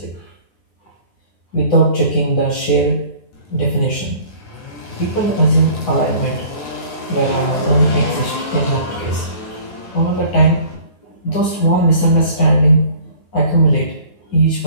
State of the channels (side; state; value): right; late; 9.7 ms